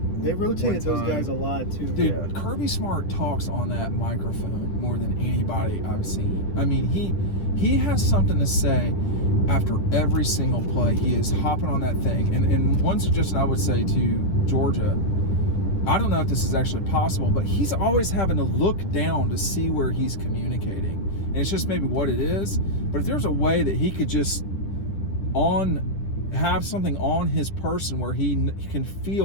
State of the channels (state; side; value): late; right; 10 ms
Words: They rotated one those time. guys a lot too. Dude, Yeah. Kirby Smart talks on that microphone more than anybody I've seen. I mean, he has something to say after every single play. He is hopping on that thing. And one suggestion I would say to Georgia, I don't know if this is actually possible, but he's always having to look down to see where he's communicating. And it's just maybe what it is. But if there's a way that he could just have something on his person where he can